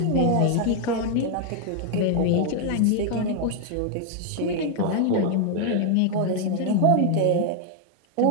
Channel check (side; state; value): both; different; correlation 0.00